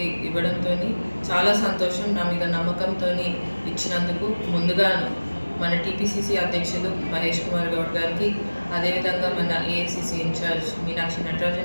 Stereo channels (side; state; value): both; inverted; correlation -1.00